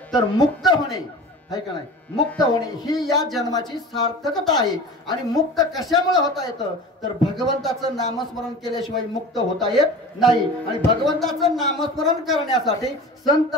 तर मुक्त होणे, आहे का नाही, मुक्त होणे ही या जन्माची सार्थकता आहे. आणि मुक्त कशामुळे होता येतं, तर भगवंताचं नामस्मरण केल्याशिवाय मुक्त होता येत नाही. आणि भगवंताचं नामस्मरण करण्यासाठी संत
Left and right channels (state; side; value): normal; both; correlation 0.36